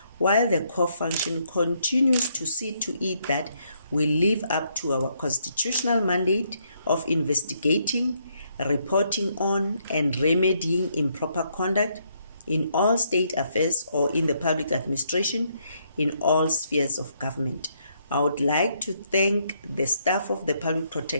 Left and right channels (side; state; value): both; inverted; correlation -0.73